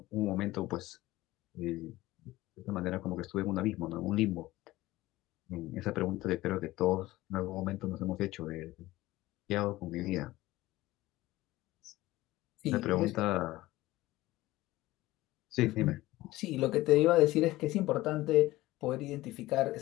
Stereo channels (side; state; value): right; quieter; 17.7 dB